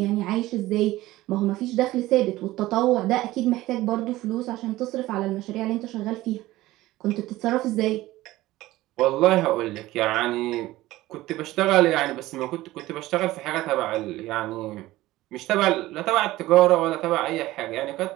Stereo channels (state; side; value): quieter; left; 17.1 dB